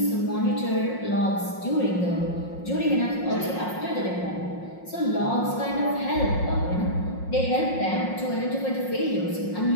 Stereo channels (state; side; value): late; right; 5.6 ms